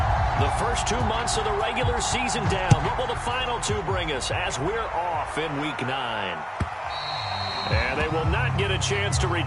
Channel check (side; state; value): both; identical; correlation 1.00